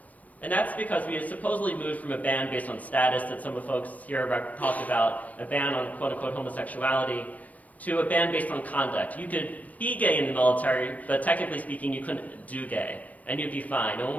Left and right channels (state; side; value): late; right; 0.072 ms